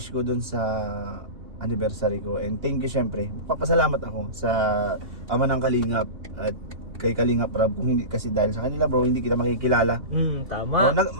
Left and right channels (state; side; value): late; left; 2.9 ms